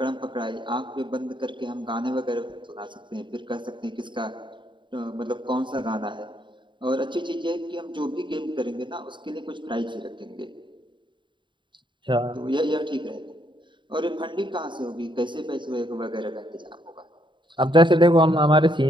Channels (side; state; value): left; late; 0.23 ms